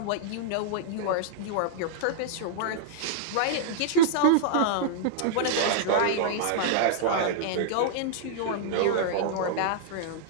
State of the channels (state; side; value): different; both; correlation -0.01